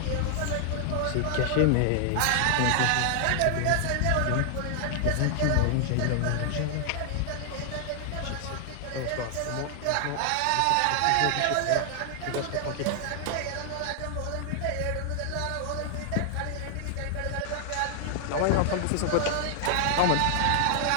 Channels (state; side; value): different; both; correlation 0.00